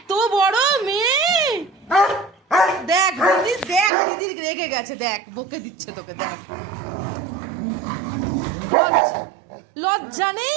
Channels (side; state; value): left; drops out; at 3.9 s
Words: বড় মেয়ে! দেখ দিদি, দেখ দিদি রেগে গেছে, দেখ বকে দিচ্ছে তোকে, দেখ। লজ্জা নেই,